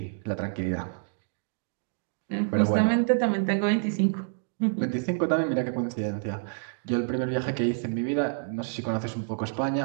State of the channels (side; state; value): left; silent; digital silence